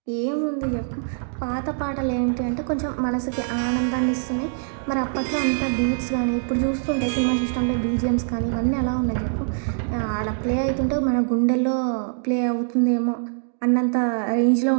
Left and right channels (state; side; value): silent; left; digital silence